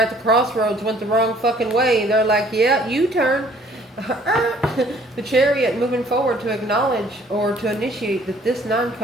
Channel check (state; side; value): normal; both; correlation 0.58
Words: the crossroads, went the wrong fucking way. They're like, yeah, U-turn. The Chariot, moving forward to acknowledge or to initiate that this 9